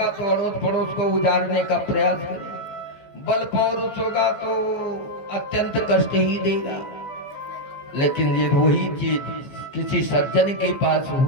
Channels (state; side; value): late; right; 15 ms